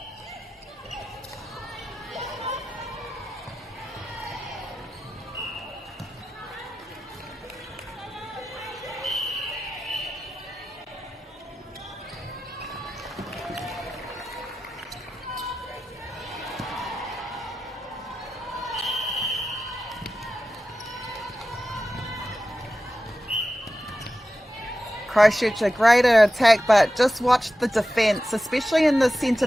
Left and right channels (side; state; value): both; normal; correlation 0.92